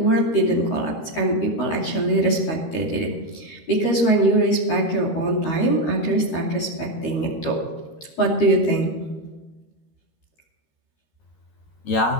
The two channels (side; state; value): right; late; 13 ms